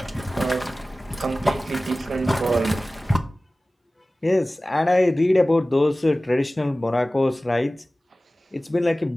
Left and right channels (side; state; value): both; normal; correlation 0.97